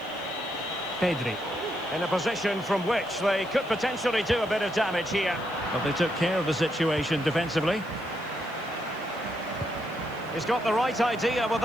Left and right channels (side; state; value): left; noise; hiss, 26 dB below the sound